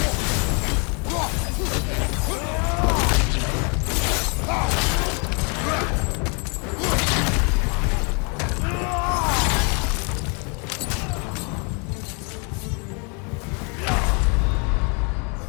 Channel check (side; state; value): right; quieter; 35.3 dB